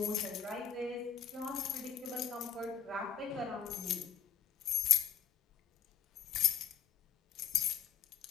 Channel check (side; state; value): right; quieter; 8.2 dB